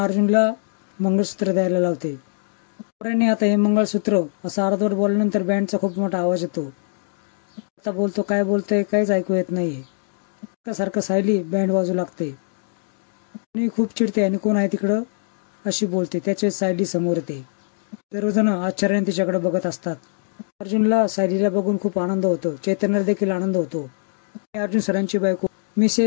अर्जुनला मंगळसूत्र द्यायला लावते. पोरांनी आता हे मंगळसूत्र असं अर्धवट बोलल्यानंतर बँडचा खूप मोठा आवाज येतो. आता बोलतो, काय बोलतोय काहीच ऐकू येत नाहीये. सारखं सायली बँड वाजू लागते. आणि खूप चिडते आणि कोण आहे तिकडं अशी बोलते. त्याच्या सायली समोर येते. सर्वजण आश्चर्याने तिच्याकडे बघत असतात. अर्जुनला सायलीला बघून खूप आनंद होतो. चैतन्याला देखील आनंद होतो. अर्जुन सरांची बायको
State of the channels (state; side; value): silent; right; digital silence